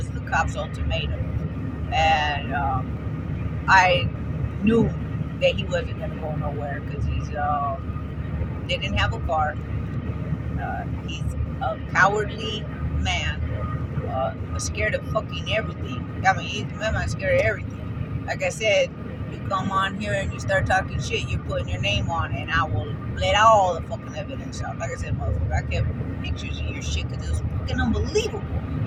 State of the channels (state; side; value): identical; both; correlation 1.00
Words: the cops' ultimatum, and I knew that he wasn't gonna go nowhere because they didn't have a car. He's a cowardly man, scared of fucking everything. I mean, he's a man scared of everything. Like I said, you come on here and you start talking shit, you're putting your name on it, and I will let all the fucking evidence out. Like I said, motherfucker, I kept pictures of your shit because it was fucking unbelievable